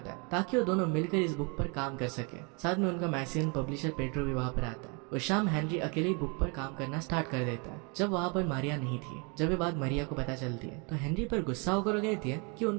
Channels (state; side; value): quieter; left; 32.8 dB